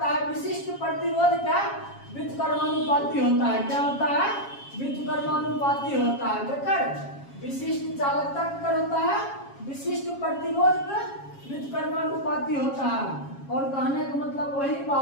है विशिष्ट प्रतिरोध का व्युत्क्रमानुपाती होता है। क्या होता है, व्युत्क्रमानुपाती होता है। देखकर विशिष्ट चालकता कर होता है, विशिष्ट प्रतिरोध का व्युत्क्रमानुपाती होता है। और कहने का मतलब वही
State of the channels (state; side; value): late; right; 7.3 ms